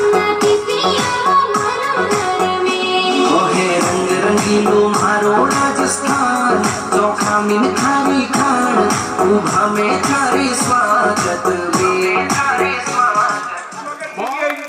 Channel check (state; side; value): identical; both; correlation 1.00